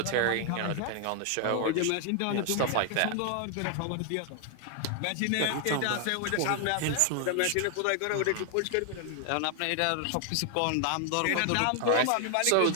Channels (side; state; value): both; different; correlation 0.00